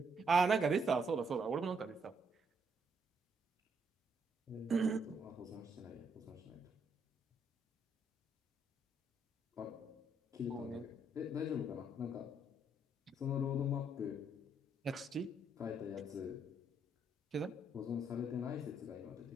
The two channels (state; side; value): normal; both; correlation 0.73